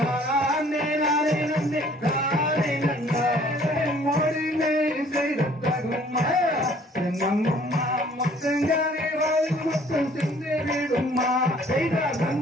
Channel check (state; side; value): normal; both; correlation 0.57